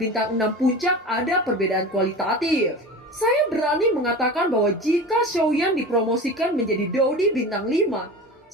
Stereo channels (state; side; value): normal; both; correlation 0.32